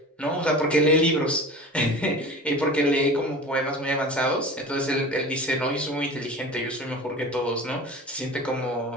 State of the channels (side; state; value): both; normal; correlation 0.36